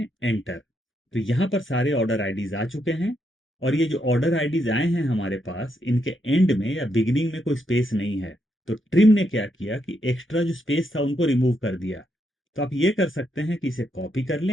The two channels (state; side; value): normal; both; correlation 0.79